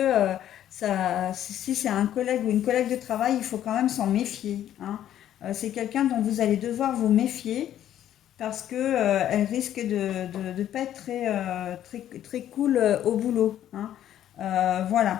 si c'est un collègue ou une collègue de travail, il faut quand même s'en méfier. Hein. C'est quelqu'un dont vous allez devoir vous méfier parce que elle risque de pas être très cool au boulot. Hein.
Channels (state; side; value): quieter; right; 11.4 dB